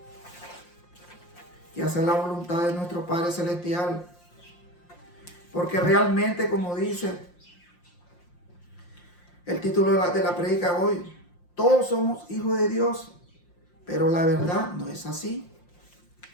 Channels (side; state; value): right; late; 5.7 ms